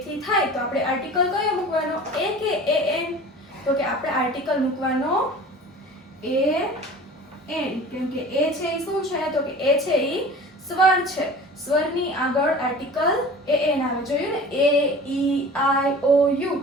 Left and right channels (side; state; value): both; normal; correlation 0.40